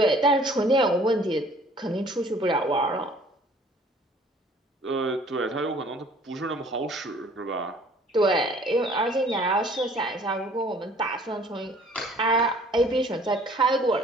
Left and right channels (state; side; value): normal; both; correlation 0.54